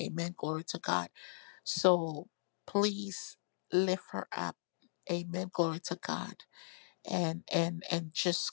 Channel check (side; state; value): right; silent; digital silence